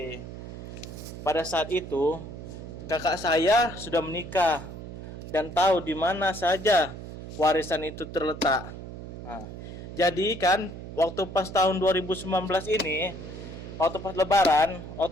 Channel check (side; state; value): right; noise; hum, 11 dB below the sound